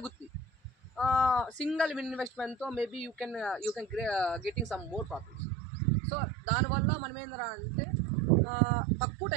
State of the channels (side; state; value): left; drops out; at 5.4 s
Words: సింగిల్ ఇన్వెస్ట్మెంట్తో maybe you can getting some more profits. So దానివల్ల మనం ఏంటంటే అంటే తక్కువ